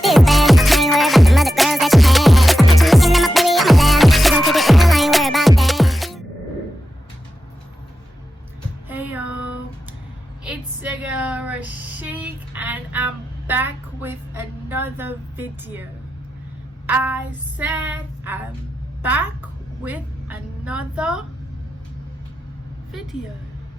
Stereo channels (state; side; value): normal; both; correlation 0.90